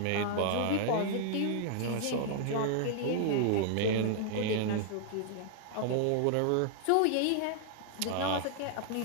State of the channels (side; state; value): both; different; correlation -0.01